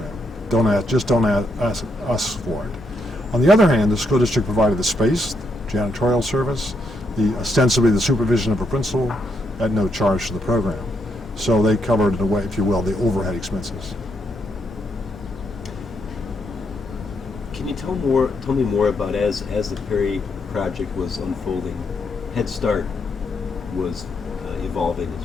Don't ask us for it. On the other hand, the school district provided the space, janitorial service, ostensibly the supervision of a principal at no charge to the program. So they covered, in a way, if you will, the overhead expenses. Can you tell me more about as the Perry Project was unfolding, Head Start was evolving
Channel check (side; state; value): both; normal; correlation 0.78